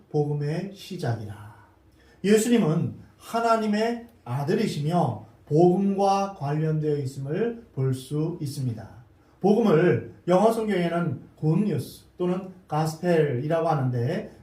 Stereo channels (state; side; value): identical; both; correlation 1.00